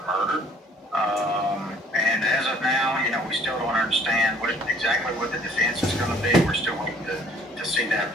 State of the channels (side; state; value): both; normal; correlation 0.57